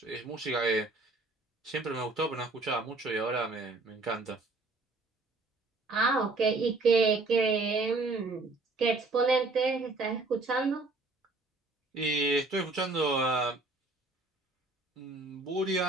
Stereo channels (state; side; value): quieter; left; 3.3 dB